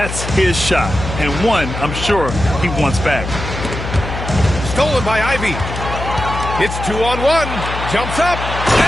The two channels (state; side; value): noise; left; hum, 7 dB below the sound